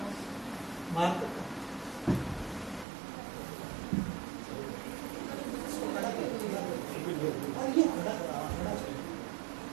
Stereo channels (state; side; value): drops out; left; at 2.9 s